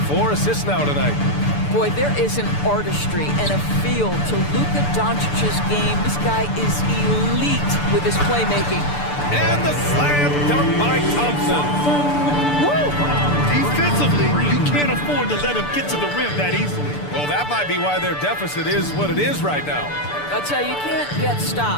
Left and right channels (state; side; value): late; right; 6.8 ms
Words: 4 assists now tonight. Boy, there is an artistry and a feel to Luka Doncic's game. This guy is elite with his playmaking. And the slam dunk by Thompson. Woo! Defensively, you can't afford to let him get to the rim that easily. Well, that might be why their deficit is what it is right now. I'll tell you, you can't get